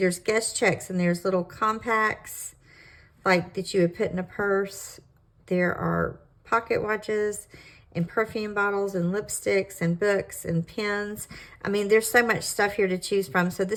guest checks and there's little compacts like that you would put in a purse. There are pocket watches and perfume bottles and lipsticks and books and pens. I mean, there's so much stuff here to choose from. So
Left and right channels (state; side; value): identical; both; correlation 1.00